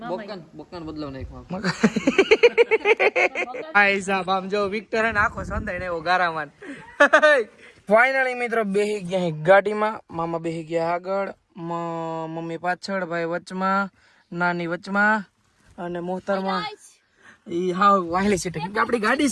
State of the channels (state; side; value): identical; both; correlation 1.00